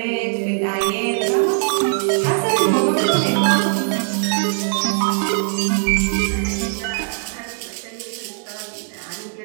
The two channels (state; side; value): silent; left; digital silence